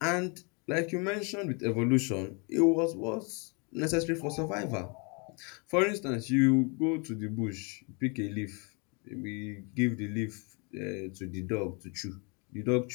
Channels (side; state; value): right; quieter; 33.1 dB